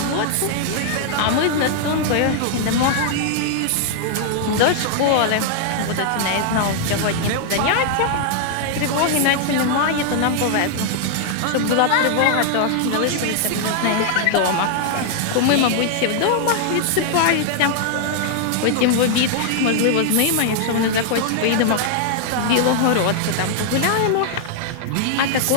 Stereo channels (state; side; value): different; both; correlation 0.00